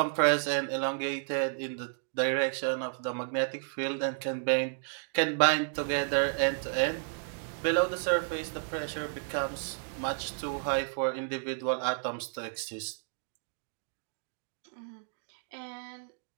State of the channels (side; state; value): left; silent; digital silence